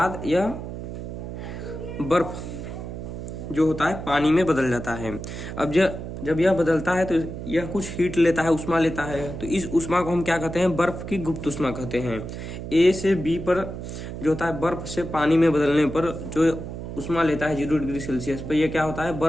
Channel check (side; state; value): right; noise; hum, 8 dB below the sound